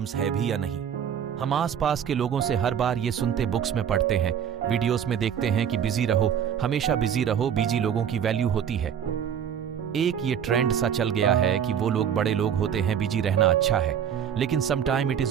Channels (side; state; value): left; quieter; 8.6 dB